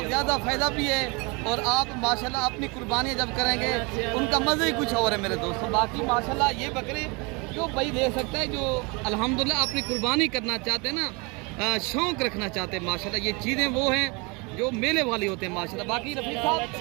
ज़्यादा फ़ायदा भी है और आप माशाल्लाह अपनी कुर्बानी जब करेंगे उनका मज़ा ही कुछ और है मेरे दोस्तों। बाकी माशाल्लाह ये बकरे जो भाई ले सकता है जो अल्हम्दुलिल्लाह अपनी कुर्बानी करना चाहते हैं ना, शौक़ रखना चाहते हैं माशाल्लाह, ये चीज़ें वो हैं जो मेले वाली होते हैं माशाल्लाह। बाकी रफीक साहब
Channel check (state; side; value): quieter; left; 29.1 dB